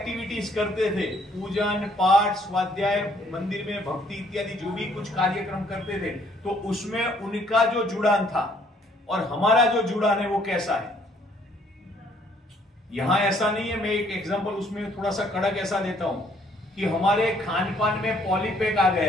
करते थे, पूजन पाठ स्वाध्याय मंदिर में भक्ति इत्यादि जो भी कुछ कार्यक्रम करते थे, तो उसमें उनका जो जुड़ान था और हमारा जो जुड़ान है वो कैसा है। यहां ऐसा नहीं है। मैं एक एग्जांपल उसमें थोड़ा सा कड़क ऐसा देता हूं कि हमारे खान पान में पॉलीपैक आ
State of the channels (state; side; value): normal; both; correlation 0.64